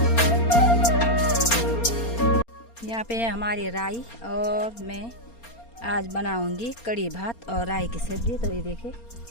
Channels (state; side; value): late; right; 4.3 ms